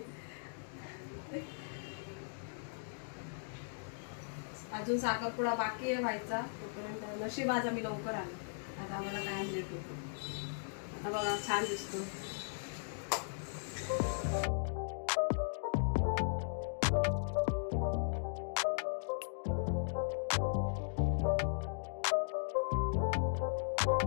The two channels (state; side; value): silent; right; digital silence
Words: अजून साखरपुडा बाकी आहे व्हायचा. तोपर्यंत नशीब आज आम्ही लवकर आलो. आता आम्हाला काय लेट होतो. आता बघा, छान दिसतो.